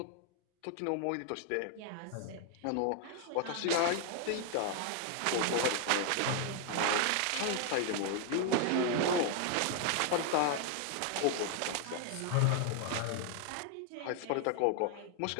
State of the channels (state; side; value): different; both; correlation 0.00